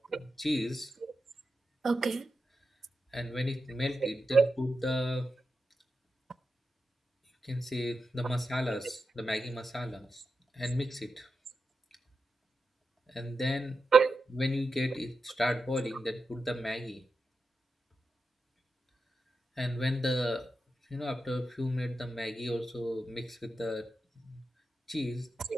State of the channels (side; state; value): both; normal; correlation 0.89